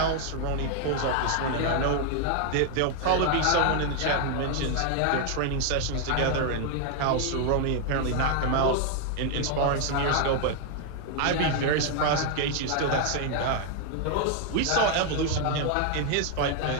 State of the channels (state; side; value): different; both; correlation 0.00